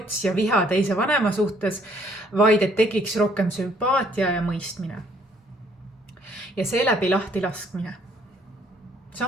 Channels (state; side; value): normal; both; correlation 0.64